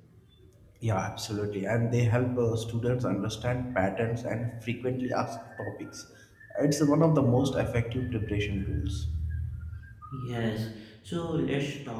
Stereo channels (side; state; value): both; identical; correlation 1.00